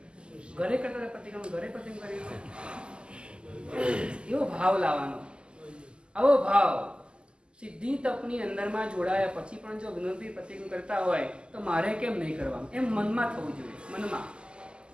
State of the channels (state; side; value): late; left; 0.049 ms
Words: ઘરે કરતા હતા પ્રતિક્રમણ, ઘરે પ્રતિક્રમણ કરી. એવો ભાવ લાવવાનો. આવો ભાવ સિદ્ધિ તપની અંદરમાં જોડાયા પછી પણ જો વિનોદભાઈ પ્રતિક્રમણ કરતા હોય તો મારે કેમ નહીં કરવાનું? એમ મનમાં થવું જોઈએ. મનમાં